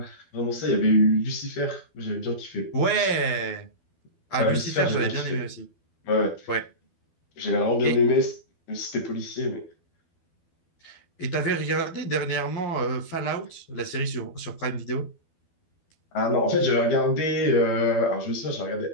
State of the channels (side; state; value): right; late; 12 ms